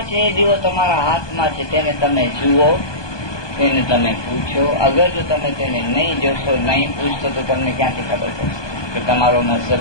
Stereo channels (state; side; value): late; right; 1.2 ms